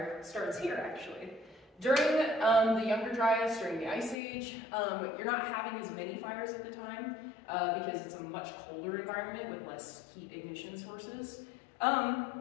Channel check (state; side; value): drops out; right; at 4.2 s